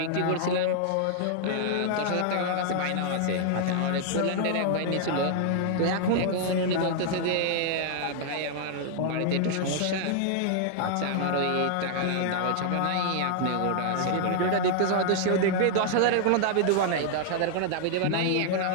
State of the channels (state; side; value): different; both; correlation 0.00